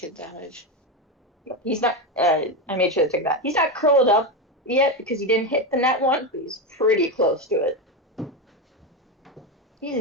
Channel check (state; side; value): normal; both; correlation 0.14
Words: damage. He's not. I made sure to take that. He's not curled up yet because he didn't hit the net one, but he's pretty close to it.